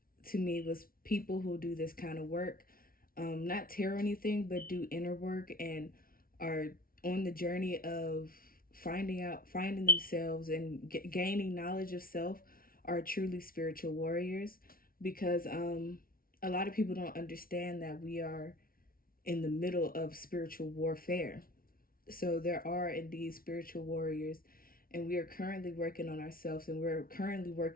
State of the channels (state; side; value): late; right; 0.43 ms